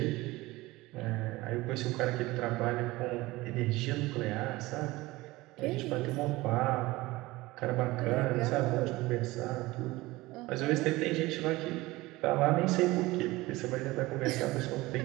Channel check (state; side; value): quieter; left; 19.9 dB